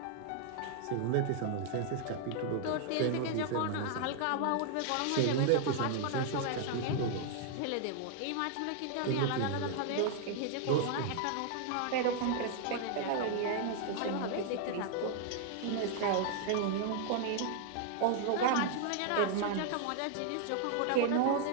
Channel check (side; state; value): both; different; correlation 0.00